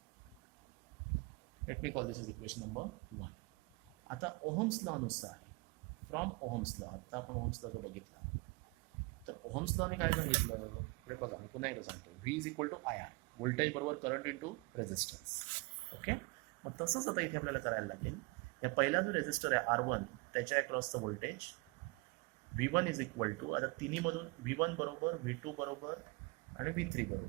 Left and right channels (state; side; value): quieter; left; 27.3 dB